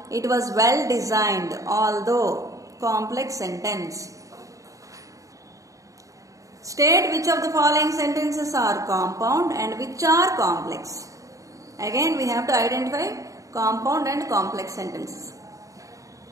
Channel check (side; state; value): left; late; 0.16 ms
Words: it was well designed. Although, complex sentence. State which of the following sentences are compound and which are complex. Again we have to identify compound and complex sentences.